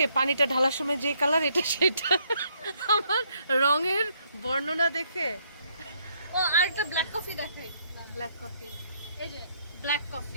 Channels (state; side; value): inverted; both; correlation -0.70